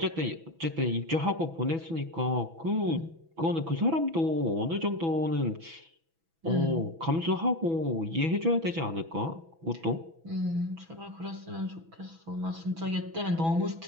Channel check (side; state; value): left; late; 6.1 ms